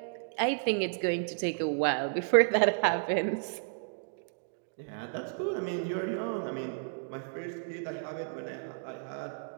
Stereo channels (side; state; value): left; silent; digital silence